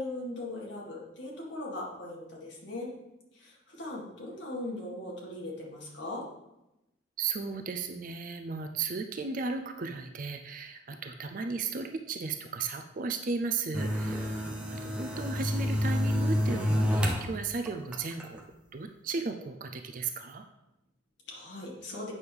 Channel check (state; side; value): normal; both; correlation 0.66